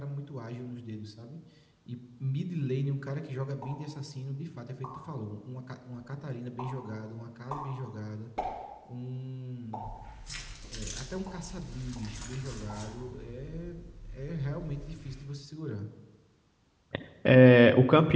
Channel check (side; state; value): both; identical; correlation 1.00